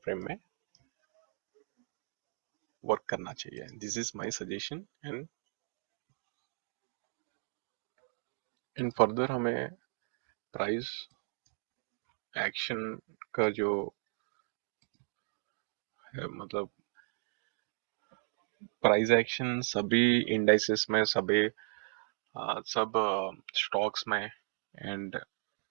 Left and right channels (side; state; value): left; silent; 54 dB below the other